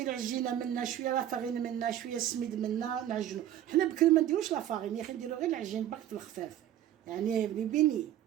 العجينه منا شويه لا فارين منا شويه السميد منا نعجنو حنا بكري ما نديروش لا فارين يا اخي نديرو غير العجين باك الخفاف يعني بني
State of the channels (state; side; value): quieter; left; 11.7 dB